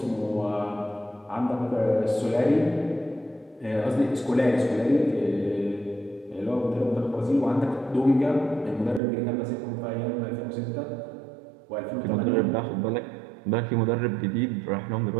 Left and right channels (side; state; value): left; drops out; at 9.0 s